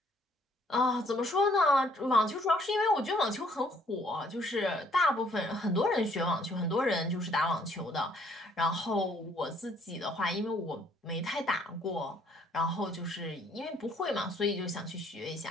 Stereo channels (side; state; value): both; normal; correlation 0.64